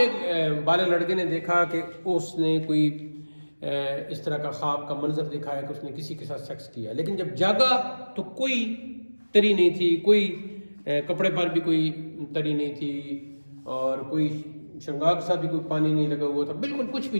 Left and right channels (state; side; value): inverted; both; correlation -1.00